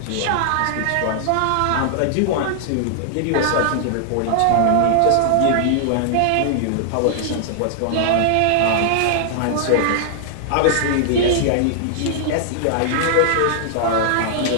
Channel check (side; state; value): both; different; correlation -0.01